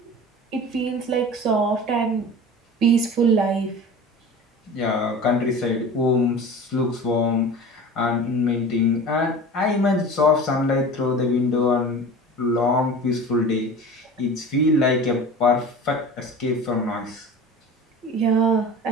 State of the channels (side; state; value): both; normal; correlation 0.37